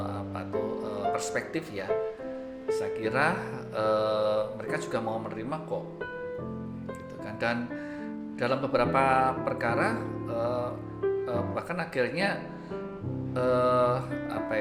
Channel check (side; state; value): both; identical; correlation 1.00